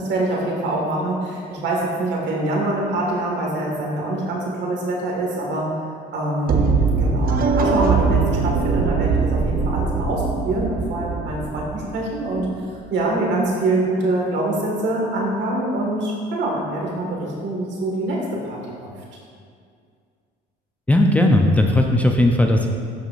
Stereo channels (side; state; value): both; normal; correlation 0.56